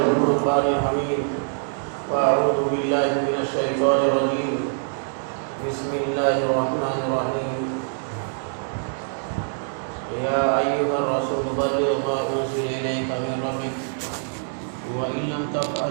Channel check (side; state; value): left; silent; 62 dB below the other